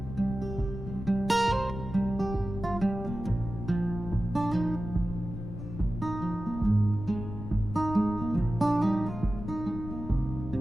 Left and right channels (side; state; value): left; noise; rumble, 9 dB below the sound